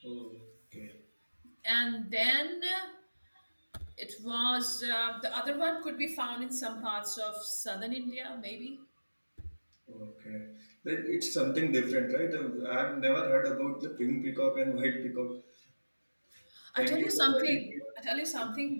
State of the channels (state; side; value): inverted; both; correlation -1.00